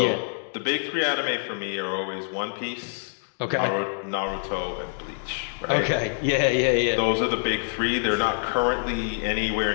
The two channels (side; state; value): right; silent; digital silence